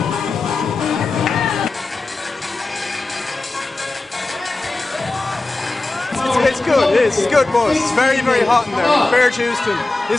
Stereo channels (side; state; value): right; quieter; 3.1 dB